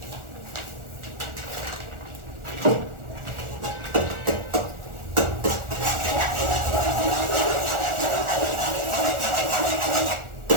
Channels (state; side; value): late; left; 1.4 ms